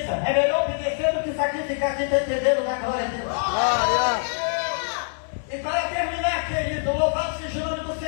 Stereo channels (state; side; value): silent; right; digital silence